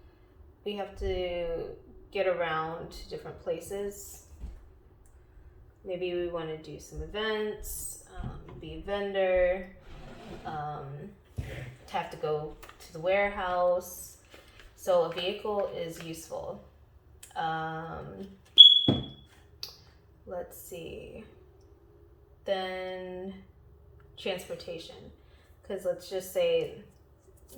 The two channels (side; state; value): both; identical; correlation 1.00